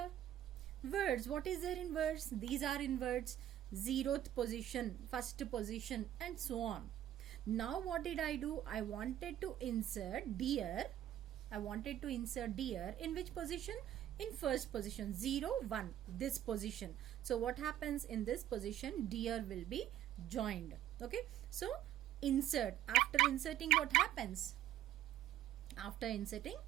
Words, what is there in words? These are in words. 0th position, 1st position, and so on. Now what did I do? I wanted to insert deer. I wanted to insert deer in which position? In first position, 0, 1, this position. So what happens in this position? Deer will be joined. Okay. So insert. After inserting, what happens? After inserting,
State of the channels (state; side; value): quieter; left; 11.8 dB